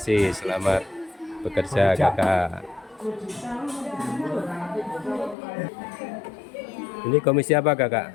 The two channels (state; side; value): drops out; right; at 5.4 s